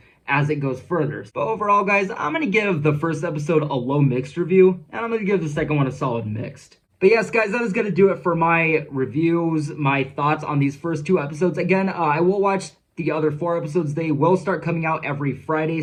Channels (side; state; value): both; identical; correlation 1.00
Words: as it goes further. But overall, guys, I'm going to give the first episode a low mixed review, and I'm going to give the second one a solid mixed. But yes, guys, that is going to do it for my reviews, my thoughts on these first 2 episodes. Again, I will watch the other 4 episodes. They will start coming out every Friday,